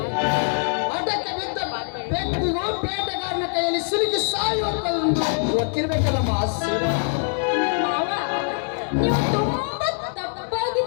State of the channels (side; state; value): right; silent; digital silence